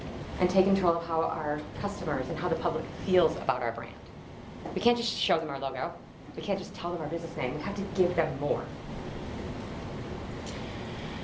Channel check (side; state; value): both; identical; correlation 1.00